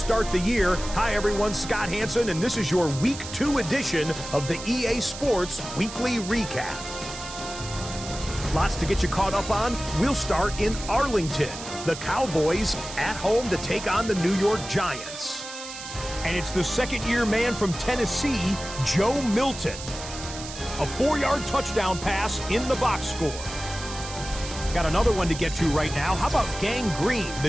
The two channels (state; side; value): noise; right; hiss, 11 dB below the sound